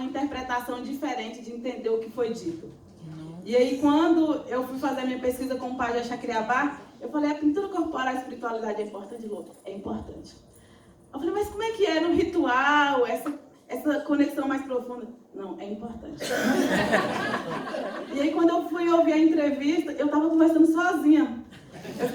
interpretação diferente de entender o que foi dito. E aí, quando eu fui fazer a minha pesquisa com o Pajé Chacriabá, eu falei, a pintura corporal e a espiritualidade é importante? É importante. Eu falei, mas como é que é no ritual, essa conexão mais profunda? Não, é importante. E aí, quando eu fui ouvir a entrevista, eu estava conversando sozinha. Eu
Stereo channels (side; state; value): both; identical; correlation 1.00